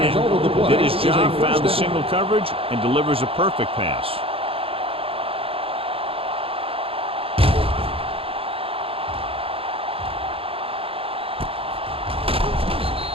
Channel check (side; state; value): left; late; 0.27 ms